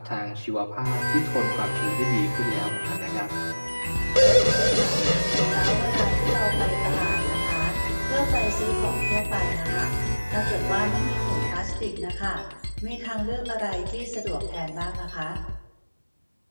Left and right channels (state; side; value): inverted; both; correlation -1.00